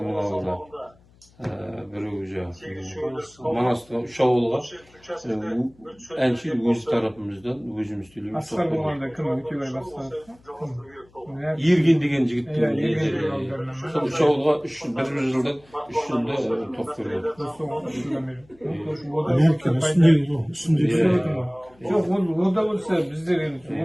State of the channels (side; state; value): left; noise; hum, 29 dB below the sound